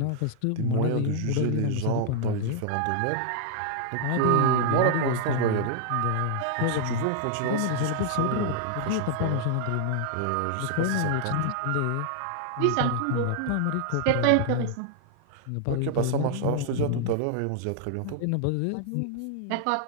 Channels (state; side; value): different; both; correlation -0.01